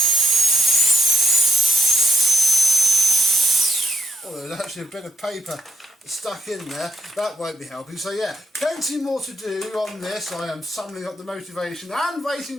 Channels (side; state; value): both; normal; correlation 0.75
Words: Oh, there's actually a bit of paper stuck in there. That won't be helping. So yeah, plenty more to do on this. I am summoning up the motivation and